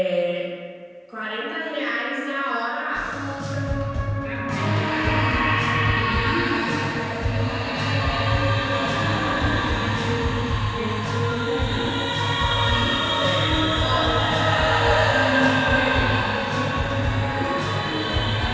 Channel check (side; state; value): both; identical; correlation 1.00